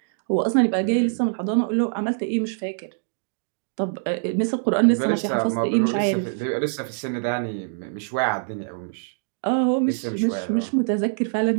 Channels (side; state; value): left; silent; digital silence